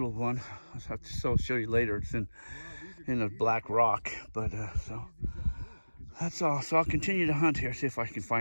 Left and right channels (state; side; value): inverted; both; correlation -1.00